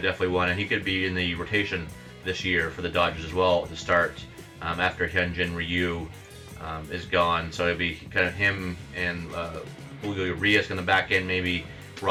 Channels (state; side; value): identical; both; correlation 1.00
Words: one, and he could be in the rotation this year for the Dodgers as well to start after Hyun-jin Ryu is gone. So it'll be kind of him and Julio Urias in the back end. Maybe